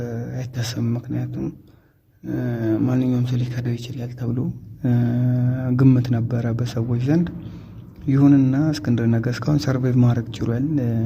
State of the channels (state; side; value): identical; both; correlation 1.00